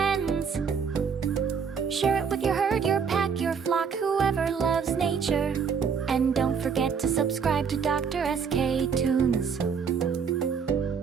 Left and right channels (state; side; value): quieter; left; 6.4 dB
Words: Share it with your herd, your pack, your flock, whoever loves nature. And don't forget to subscribe to DrSK Toons,